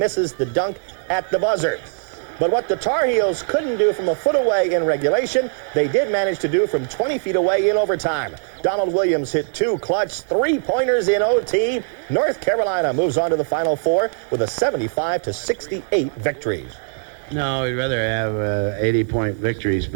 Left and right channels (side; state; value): left; silent; 65 dB below the other